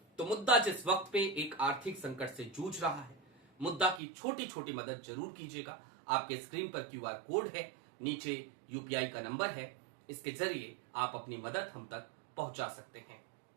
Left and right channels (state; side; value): drops out; left; at 4.0 s